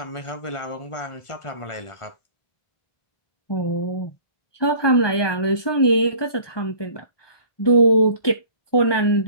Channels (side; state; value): right; late; 1.2 ms